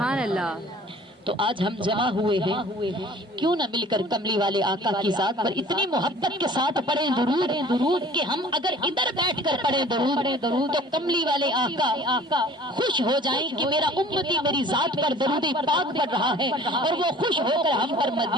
اللہ۔ تو آج ہم جمع ہوئے ہیں، کیوں نہ مل کر کملی والے آقا کی ذات پر اتنی محبت کے ساتھ پڑھیں درود کہ ہم اگر ادھر بیٹھ کر پڑھیں درود تو کملی والے آقا خوش ہو جائیں کہ میرا امتی میری ذات پر درود پاک پڑھ رہا ہے، اور وہ خوش ہو کر ہم پر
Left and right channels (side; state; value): both; normal; correlation 0.48